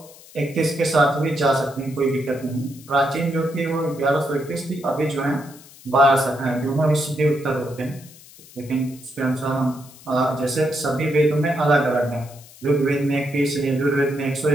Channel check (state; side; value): noise; left; hiss, 21 dB below the sound